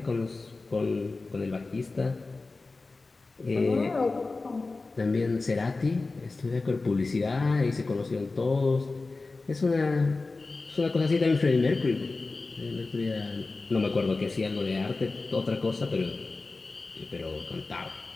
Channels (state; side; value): quieter; right; 3.6 dB